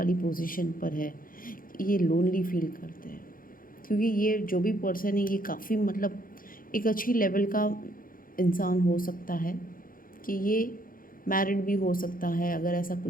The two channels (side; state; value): right; late; 0.41 ms